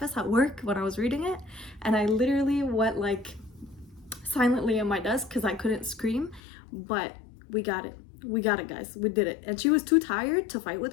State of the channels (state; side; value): drops out; right; at 6.4 s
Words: at work when I was reading it, and I literally went like silently in my desk because I couldn't scream. But we got it, guys, we did it. And she was too tired to fight with